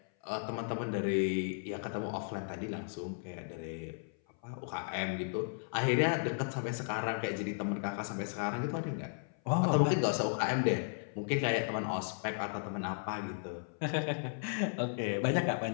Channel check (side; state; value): right; silent; 54 dB below the other